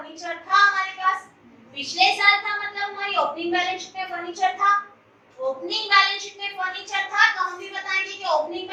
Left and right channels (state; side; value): identical; both; correlation 1.00